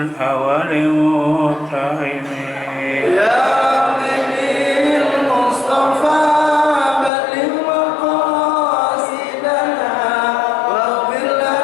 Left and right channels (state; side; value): drops out; right; at 7.1 s